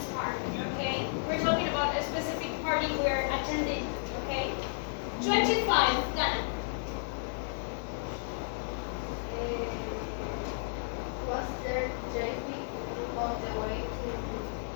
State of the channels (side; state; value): right; silent; 56 dB below the other